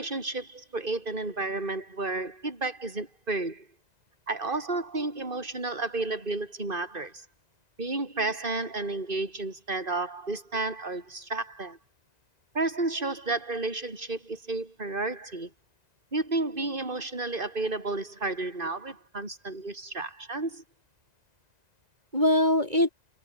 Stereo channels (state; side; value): late; left; 2.5 ms